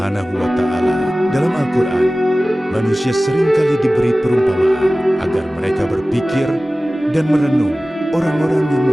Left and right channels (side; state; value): both; normal; correlation 0.97